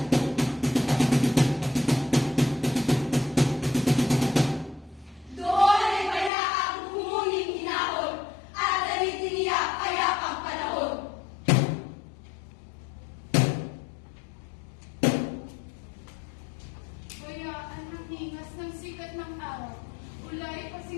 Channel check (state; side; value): drops out; right; at 6.3 s